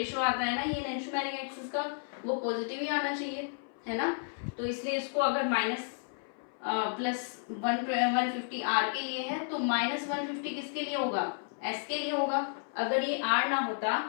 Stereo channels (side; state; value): right; silent; 56 dB below the other